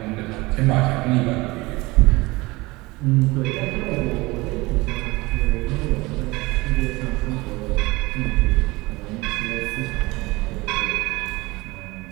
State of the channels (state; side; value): quieter; left; 22.4 dB